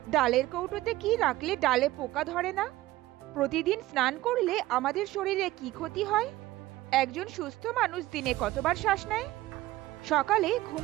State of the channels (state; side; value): quieter; left; 16.9 dB